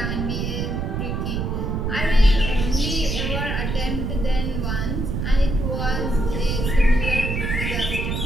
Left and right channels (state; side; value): noise; right; rumble, 2 dB below the sound